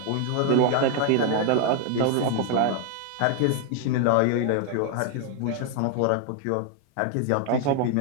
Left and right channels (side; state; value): both; different; correlation 0.00